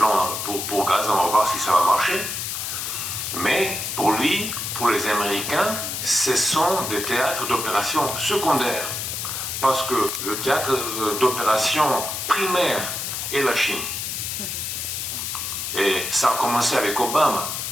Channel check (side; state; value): left; noise; hiss, 4 dB below the sound